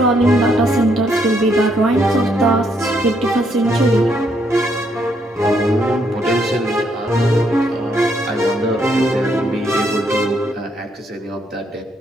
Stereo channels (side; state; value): both; normal; correlation 0.73